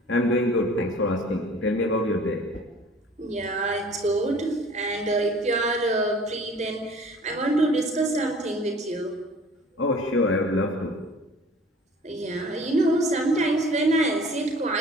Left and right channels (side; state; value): both; normal; correlation 0.48